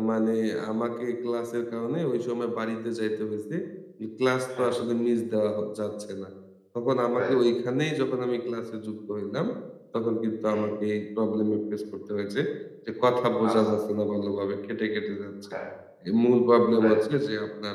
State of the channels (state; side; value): identical; both; correlation 1.00